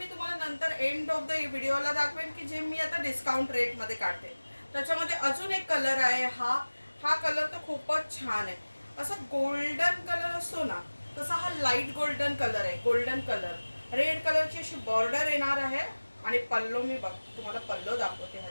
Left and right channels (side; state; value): both; inverted; correlation -1.00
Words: तुम्हाला नंतर एंड ऑफ द व्हिडिओला दाखवेन की जे मी आता डिस्काउंट रेटमध्ये काढते. त्याच्यामध्ये अजून एक कलर आहे. हा कलर तर खूपच छान आहे. असं गोल्डन कलर असतो ना, तसा हा लाईट गोल्डन कलर आहे. गोल्डन कलर, रेड कलरची अशी बॉर्डर येणार आहे आणि पल्लो मी तुम्हाला पल्लो दाखवते